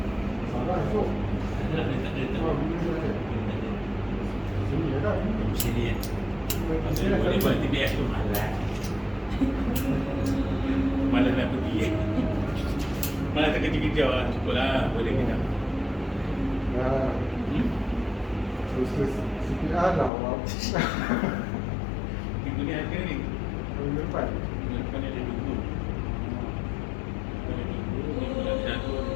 Sini ya. Maksudnya boleh buat TBS tu malas. Malas nak pergi. Malas terkejar-kejar lah. Cukup lah. Boleh kita. Terus CPR lah awak. Minggu ni ada ni. Minggu depan. Minggu depan ni ada 20. Ada 20. Minggu depan ada 1,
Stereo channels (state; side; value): drops out; right; at 20.1 s